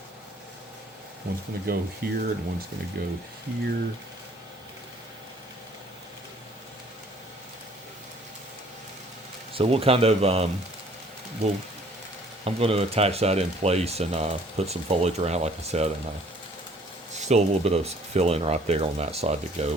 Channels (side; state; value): both; normal; correlation 0.57